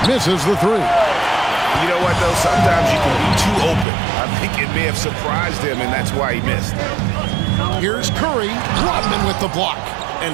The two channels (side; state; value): left; drops out; at 3.9 s